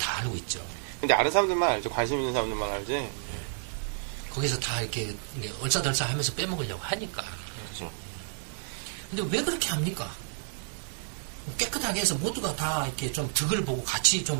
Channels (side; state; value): left; silent; digital silence